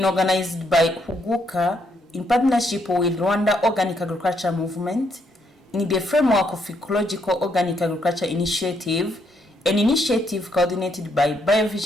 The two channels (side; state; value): both; normal; correlation 0.75